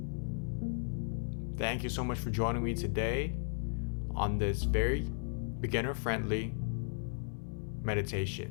Thank you so much for joining me today on this very beginner-friendly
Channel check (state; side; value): silent; right; 54 dB below the other